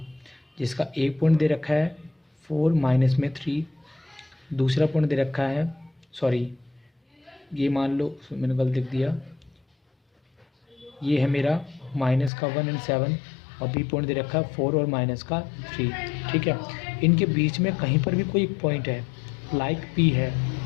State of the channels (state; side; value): drops out; right; at 12.3 s